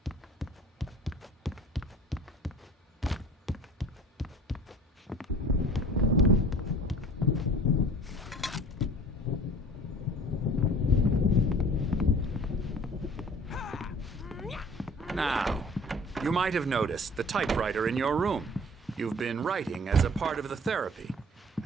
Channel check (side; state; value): both; normal; correlation 0.46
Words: now, you might have noticed the typewriter in your room. You've been writing as a part of the therapy.